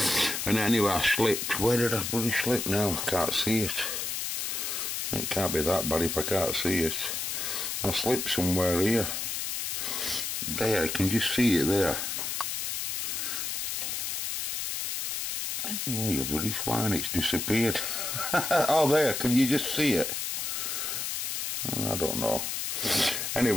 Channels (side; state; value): left; noise; hiss, 2 dB below the sound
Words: and anyway, I slipped. Where did I bloody slip now? I can't see it. It can't be that bad if I can't see it. I slipped somewhere here. There, you can just see it there. Oh, you bloody swine, it's disappeared. Oh, there, can you just see it? I don't know.